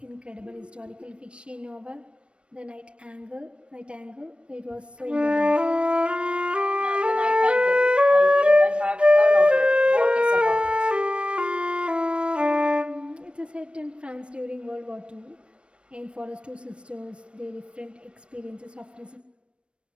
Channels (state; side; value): late; left; 0.058 ms